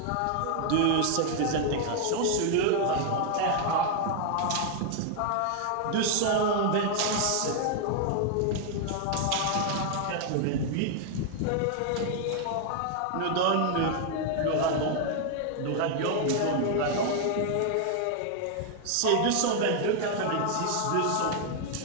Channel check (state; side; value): different; both; correlation 0.00